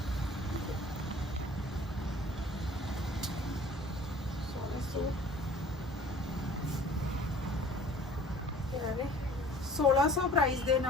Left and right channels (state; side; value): normal; both; correlation 0.49